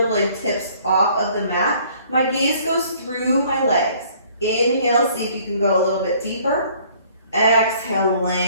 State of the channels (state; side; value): inverted; both; correlation -0.58